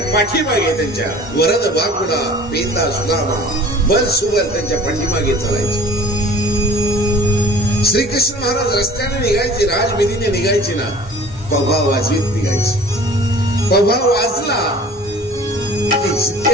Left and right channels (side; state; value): both; normal; correlation 0.46